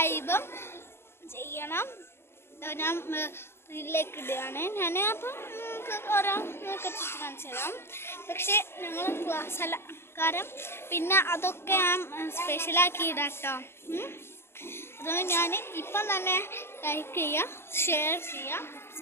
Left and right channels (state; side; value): late; right; 0.12 ms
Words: ചെയ്യണം. ഞാൻ ഇതിലേക്ക് ഇടുകയാണ്. ഞാൻ അപ്പം ഓരോ കാണിച്ചു തരാം. പക്ഷേ ഞങ്ങൾ ക്ലാസ് അല്ല, കാരണം പിന്നെ അതൊക്കെ ഞാൻ സ്പെഷ്യലാക്കി ഇടാം കേട്ടോ. അതുകൊണ്ട് ഞാൻ ഇപ്പം തന്നെ ലൈക്ക് ചെയ്യുക, ഷെയർ ചെയ്യുക,